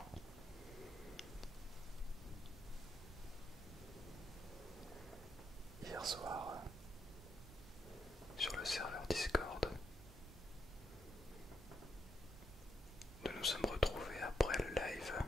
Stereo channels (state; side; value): normal; both; correlation 0.79